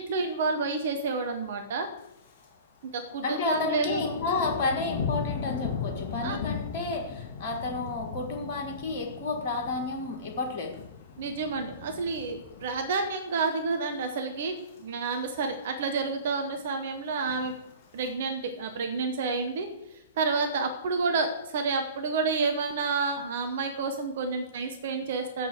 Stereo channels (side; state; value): both; inverted; correlation -0.40